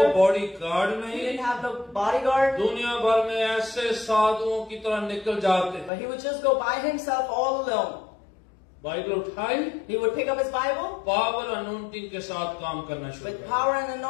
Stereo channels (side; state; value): right; drops out; at 5.9 s